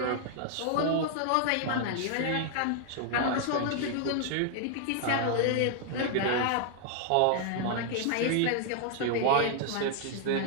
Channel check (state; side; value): different; both; correlation 0.00